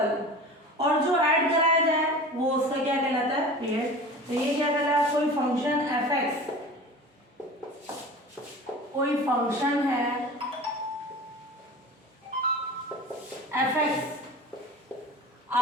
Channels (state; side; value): normal; both; correlation 0.37